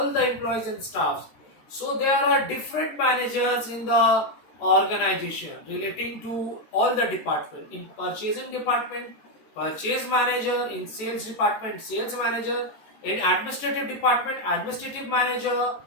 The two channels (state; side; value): late; right; 14 ms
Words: the employees and staffs. So there are different managers in the organization relating to all the department. In purchasing department, purchase manager; in sales department, sales manager; in administrative department, administrative manager;